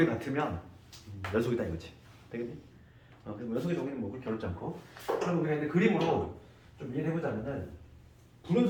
같으면 연속이다 이거지. 되겠니? 그래서 연속의 정의는 뭐 그렇게 어렵지 않고. 그럼 우리가 이제 그림으로 좀 이해를 해보자면은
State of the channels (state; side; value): identical; both; correlation 1.00